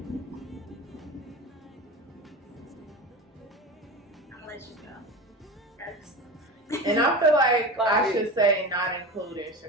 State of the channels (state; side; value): normal; both; correlation 0.28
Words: I'll let you first. And I feel like I should say not including